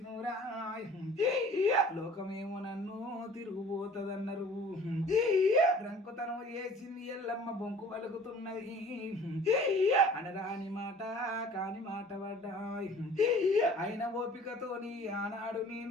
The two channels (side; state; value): both; normal; correlation 0.49